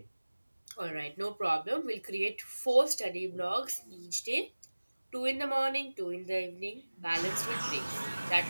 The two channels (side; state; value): both; inverted; correlation -1.00